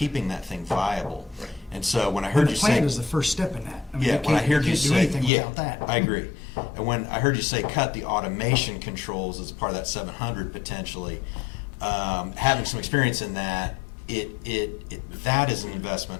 that thing viable. And so when I heard you say. The plan is the first step in that. I mean, Yeah, you when I can't- heard you can't do say, anything yeah, without that. I agree. And when I heard you say cut the automation controls as part of that 700 potentially, having some experience in that, that is an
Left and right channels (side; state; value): right; drops out; at 5.3 s